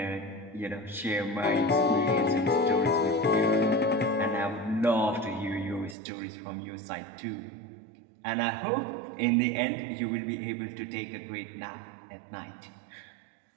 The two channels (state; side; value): drops out; left; at 6.0 s